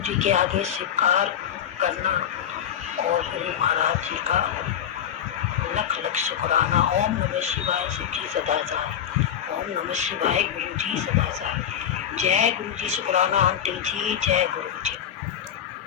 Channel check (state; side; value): quieter; right; 9.6 dB